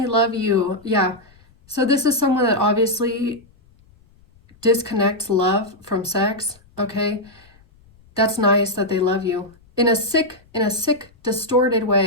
love you. Yeah. So this is someone that obviously disconnects love from sex, okay? That's nice that they love you. In a sick, distorted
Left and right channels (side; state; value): left; noise; rumble, 30 dB below the sound